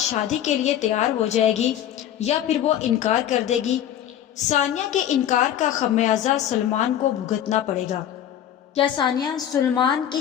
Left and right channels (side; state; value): right; quieter; 10.7 dB